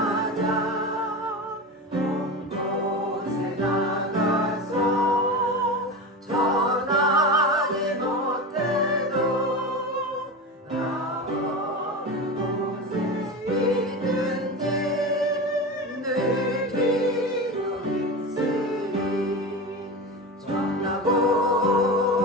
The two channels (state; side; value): normal; both; correlation 0.25